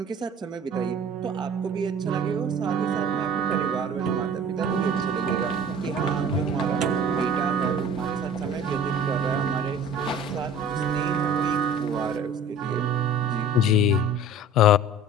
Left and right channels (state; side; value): normal; both; correlation 0.44